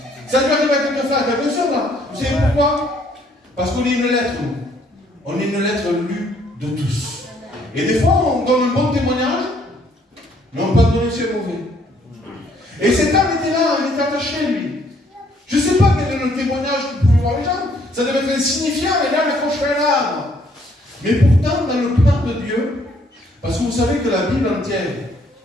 Ça lui arrive à quelques frères, quelques soeurs là. Vous savez pourquoi? Parce qu'on est une lettre, nous. On est une lettre lue de tous. Et des fois, on donne un bon témoignage, mais on peut donner aussi un mauvais. Et cet homme était là, il était attaché, lui. Je ne sais pas quel est le témoignage que pouvaient voir les gens. Ça devait être insignifiant, mais là, il accrocherait un arbre. Mais pourtant, dans le plan de Dieu, parce que vous savez que la Bible entière,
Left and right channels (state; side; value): normal; both; correlation 0.65